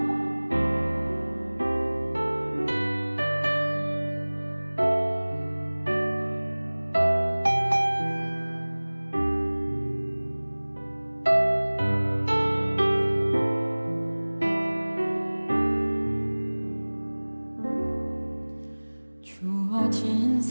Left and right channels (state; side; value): inverted; both; correlation -1.00